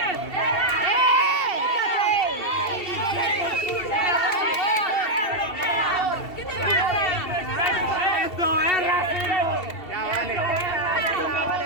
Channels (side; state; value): right; late; 2.7 ms